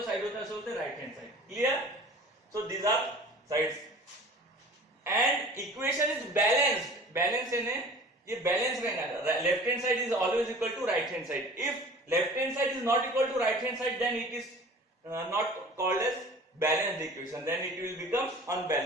साइड होता है उसे बोलते हैं right hand side. Clear? So these are sides. And equation is balanced. Balance है, ये बैलेंस रहेगा. Left hand side is always equal to right hand side. If left hand side is not equal to right hand side, then it is not called as balanced equation. Then it will become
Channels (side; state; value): both; normal; correlation 0.44